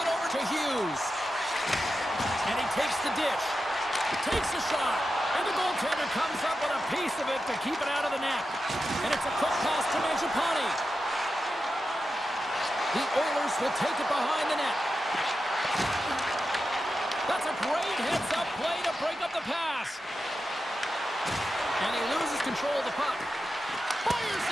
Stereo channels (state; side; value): normal; both; correlation 0.90